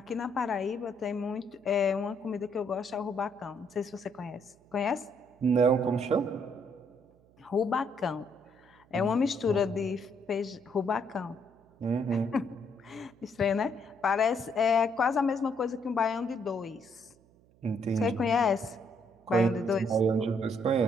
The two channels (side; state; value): right; noise; hum, 30 dB below the sound